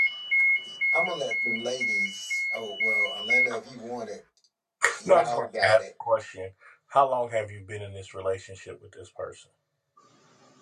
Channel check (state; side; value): identical; both; correlation 1.00